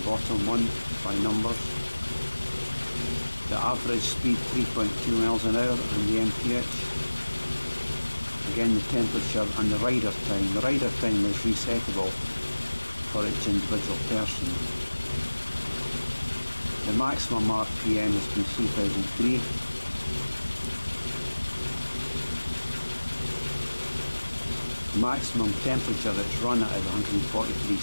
bottom one by numbers. The average speed 3.2 miles an hour and the MPH. Again the temperature and the rider time. The rider time is resettable for each individual person. The maximum RPM has been 3003. The maximum temperature that's run at is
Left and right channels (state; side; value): inverted; both; correlation -1.00